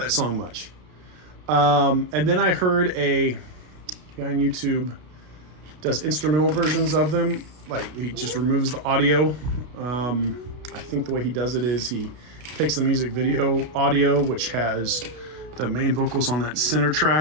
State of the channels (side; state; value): left; late; 32 ms